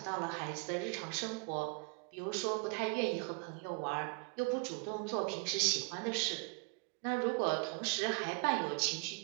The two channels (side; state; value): left; quieter; 32.3 dB